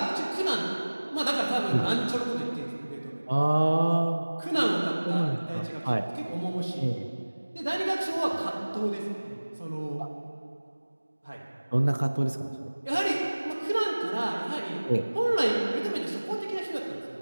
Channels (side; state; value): both; inverted; correlation -1.00